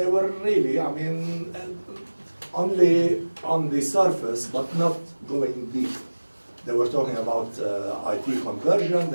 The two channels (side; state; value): both; inverted; correlation -1.00